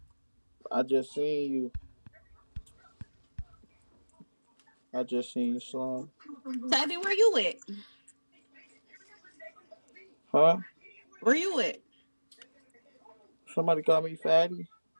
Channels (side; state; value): both; inverted; correlation -1.00